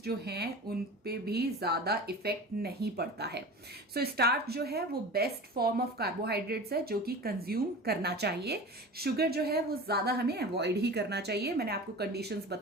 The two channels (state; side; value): normal; both; correlation 0.34